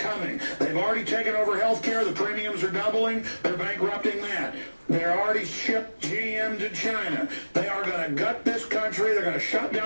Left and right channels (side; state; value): both; inverted; correlation -1.00